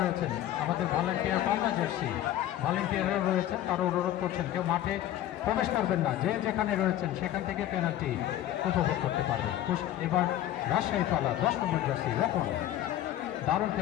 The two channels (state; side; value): quieter; right; 12.6 dB